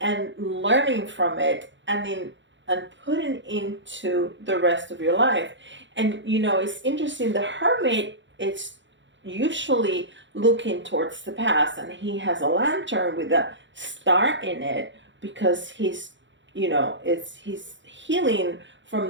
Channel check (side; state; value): left; late; 0.54 ms